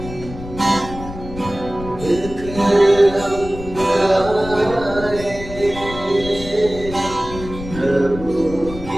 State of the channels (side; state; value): left; noise; rumble, 12 dB below the sound